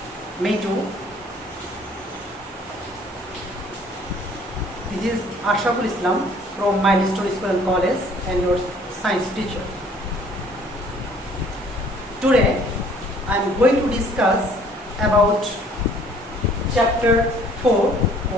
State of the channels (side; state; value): both; normal; correlation 0.57